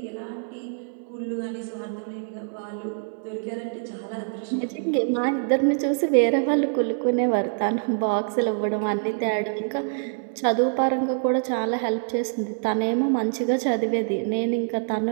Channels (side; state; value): left; silent; 62 dB below the other